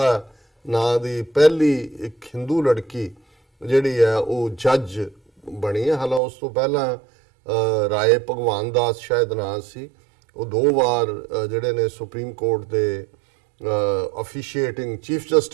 ਨਾਂ ਦੀ ਪਹਿਲੀ ਇੱਕ ਹਿੰਦੂ ਲੜਕੀ ਜਿਹੜੀ ਹੈ ਉਹ ਜੱਜ ਬਣੀ ਹੈ। ਹਾਲਾਂ ਉਸ ਤੋਂ ਪਹਿਲਾਂ ਰਾਏ ਭਗਵਾਨ ਦਾਸ ਸ਼ਾਇਦ ਨਾਂ ਸੀ, ਉਹ 2 ਵਾਰ ਜਿਹੜੇ ਨੇ ਸੁਪਰੀਮ ਕੋਰਟ ਦੇ ਅਫੀਸ਼ੀਏਟਿੰਗ ਚੀਫ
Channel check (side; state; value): left; drops out; at 6.2 s